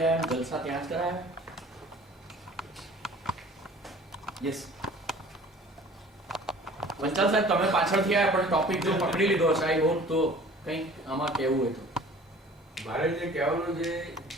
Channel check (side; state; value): both; normal; correlation 0.48